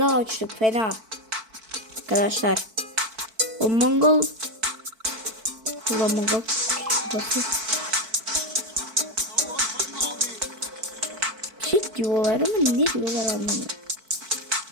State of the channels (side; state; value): left; late; 4.5 ms